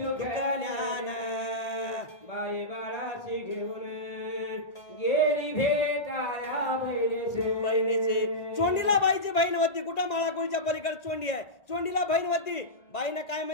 बाई बाळाशी घेऊन गेली भेटाया बहिणीचे. चोंडीला बाईची बहीण होती. कुठं माळाकोळीच्या पलीकडे चोंडी आहे, चोंडीला बहीण होती. बाईनं काय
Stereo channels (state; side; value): late; right; 1.8 ms